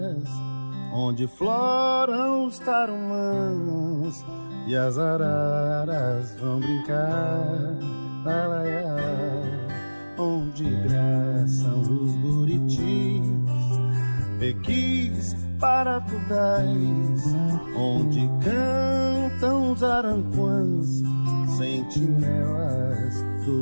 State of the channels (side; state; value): both; inverted; correlation -1.00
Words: onde floram os tarumãs e as araras vão brincar, lalaiá, onde graçam os buritis, pequis, paratudais, onde cantam os aranquãs, sentinelas do